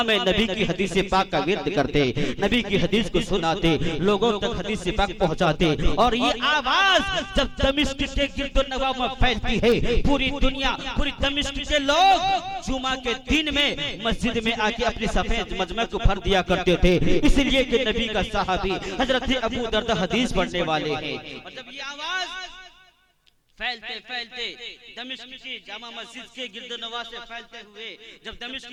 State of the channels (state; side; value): identical; both; correlation 1.00